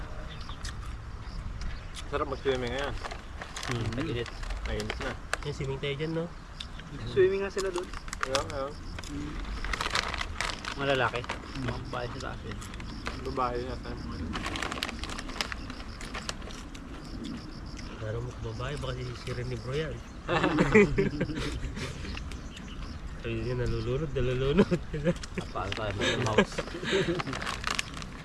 Sarap mag-swimming ngayon. Nag-init. Nainit na. Yung swimming tayo dyan, no? Swimming nga sila doon. Ayun. Mga lalaki. Mga babae sa taas yun. Babae na tayo. Laro mo kung babae, baka sisirin ni bro yan. Ayun yun, nalulunod. Paano tayo mga mouse.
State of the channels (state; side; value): identical; both; correlation 1.00